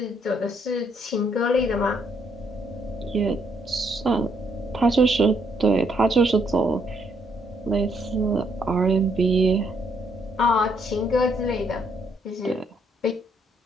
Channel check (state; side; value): normal; both; correlation 0.72